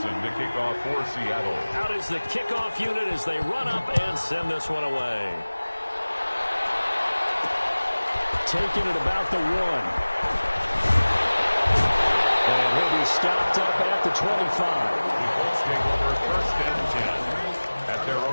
to kick off for Seattle. Out is the kickoff unit as they run up and send this one away. Taking it about the 1. And he'll be stopped up at the 25. The Colts take over 1st and 10 at their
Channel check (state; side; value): inverted; both; correlation -1.00